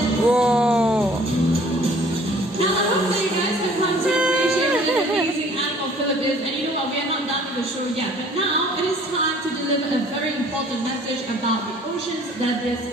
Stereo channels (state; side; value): normal; both; correlation 0.54